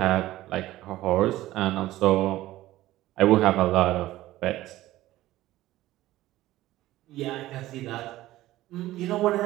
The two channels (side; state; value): left; quieter; 15.8 dB